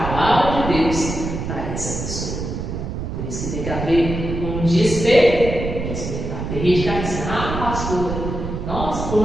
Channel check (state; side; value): noise; right; rumble, 5 dB below the sound